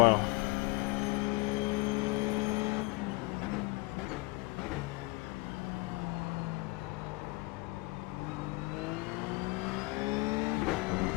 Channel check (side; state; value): right; quieter; 24.7 dB